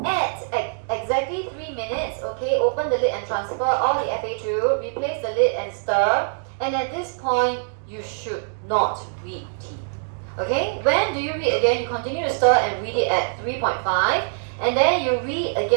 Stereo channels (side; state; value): left; silent; digital silence